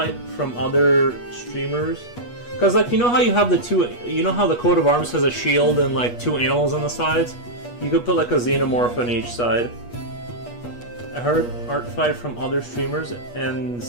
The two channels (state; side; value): late; right; 8.3 ms